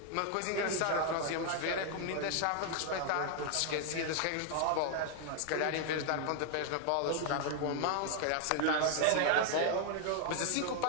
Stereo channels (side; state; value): both; different; correlation 0.00